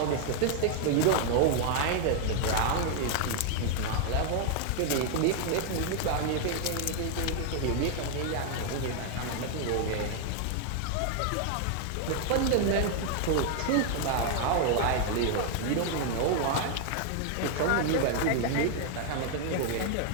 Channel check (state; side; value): different; both; correlation 0.00